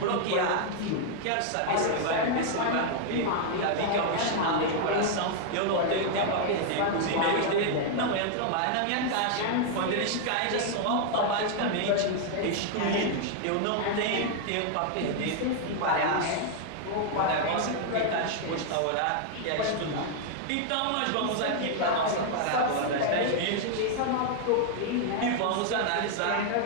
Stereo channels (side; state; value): both; different; correlation 0.00